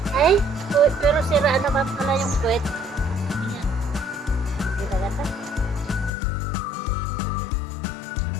Ay, pero sira naman pala yung puwet. Ayan. Hindi na gata.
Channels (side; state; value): right; drops out; at 6.1 s